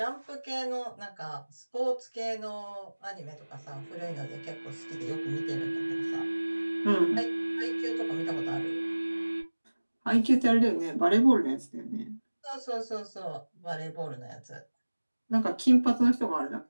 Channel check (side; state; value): both; inverted; correlation -1.00